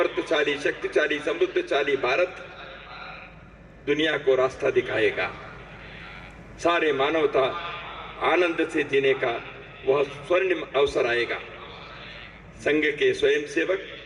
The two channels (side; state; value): both; identical; correlation 1.00